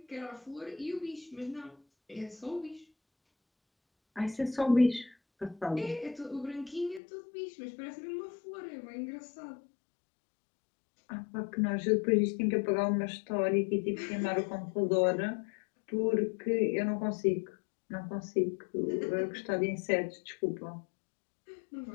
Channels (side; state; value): right; drops out; at 7.0 s